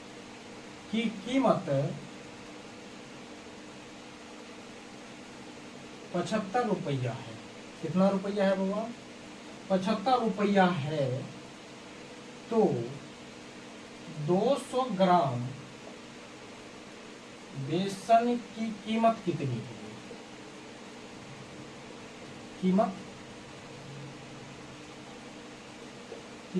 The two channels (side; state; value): both; identical; correlation 1.00